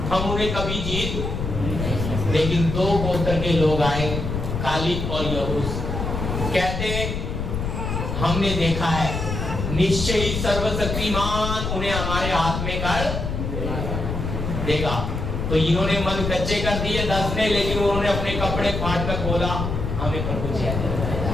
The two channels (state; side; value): noise; left; rumble, 3 dB below the sound